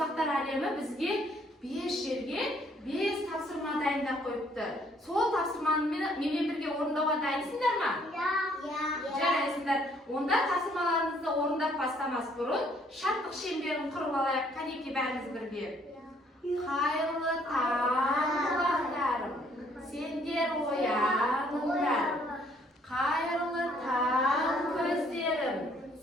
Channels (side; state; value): both; normal; correlation 0.64